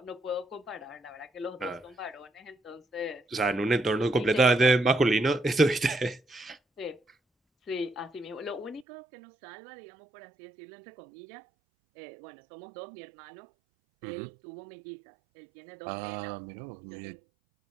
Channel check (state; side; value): drops out; left; at 8.8 s